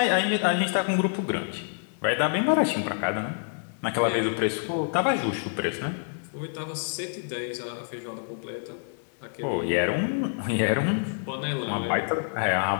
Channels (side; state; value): right; silent; digital silence